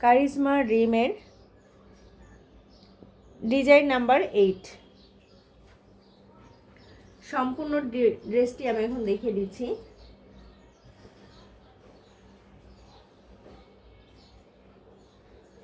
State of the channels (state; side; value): identical; both; correlation 1.00